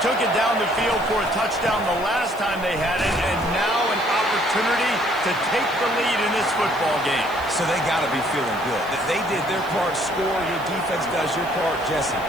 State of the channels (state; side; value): noise; right; hiss, 22 dB below the sound